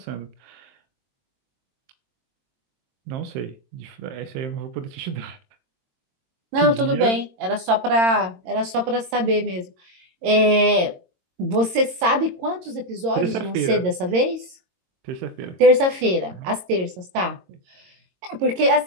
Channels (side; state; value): left; late; 22 ms